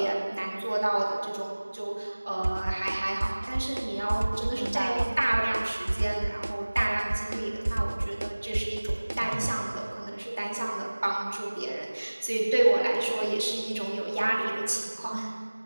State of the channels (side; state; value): both; inverted; correlation -1.00